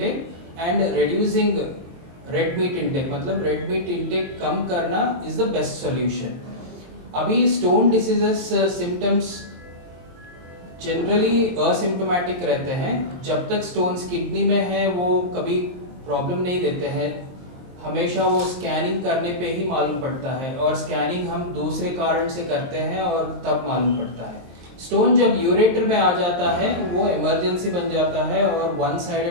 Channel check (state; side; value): late; left; 23 ms